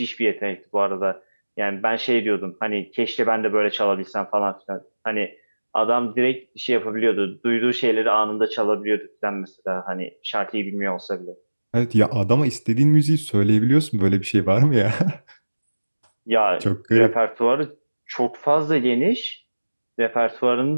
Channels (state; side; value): inverted; both; correlation -1.00